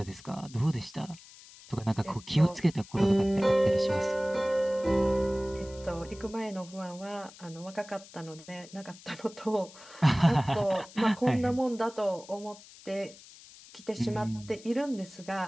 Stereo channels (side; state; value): left; noise; hiss, 20 dB below the sound